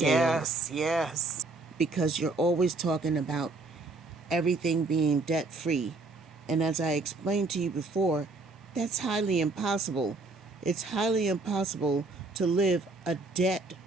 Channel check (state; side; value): quieter; left; 3.3 dB